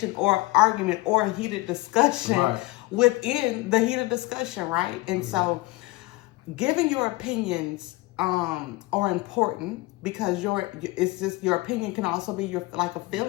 or argument or heated discussion within the heated discussion, right? And so giving your opinions are important, because your opinion can also be like a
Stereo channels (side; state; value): right; quieter; 21.3 dB